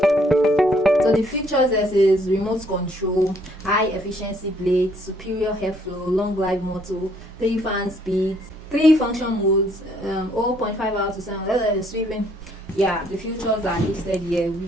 So the features is remote control, high efficiency blades, superior airflow, long life motor, 3 fan speeds, 3 function modes, 0.5 hours to 7 sweeping. Yeah, the features are listed here,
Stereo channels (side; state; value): both; normal; correlation 0.66